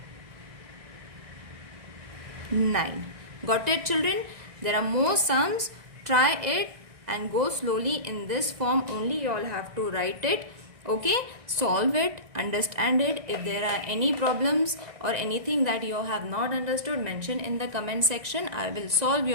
9. Got it, children? There are more sums. Try it and go slowly in this form only. You all have to write it. Okay, solve it, understand it. If there are any problems or anything that you have not understood, mention in the comment section. I will solve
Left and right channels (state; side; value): late; left; 1.6 ms